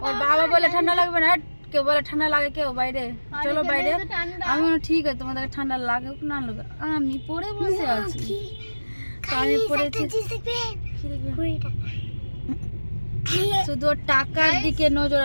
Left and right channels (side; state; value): both; inverted; correlation -1.00